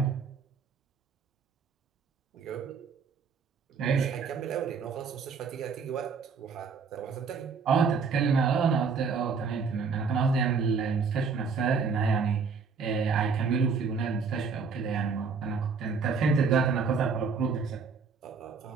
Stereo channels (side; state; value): left; quieter; 5.3 dB